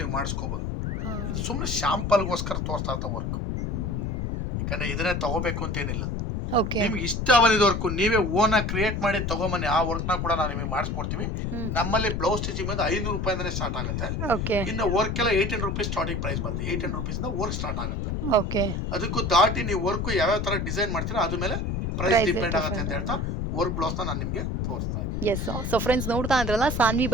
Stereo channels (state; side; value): noise; left; rumble, 2 dB below the sound